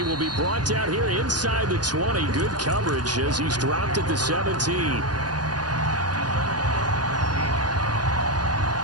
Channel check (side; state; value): left; late; 0.69 ms